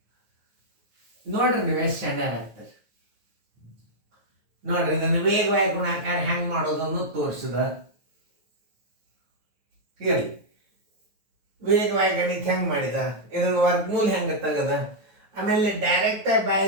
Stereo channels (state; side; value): late; left; 9.2 ms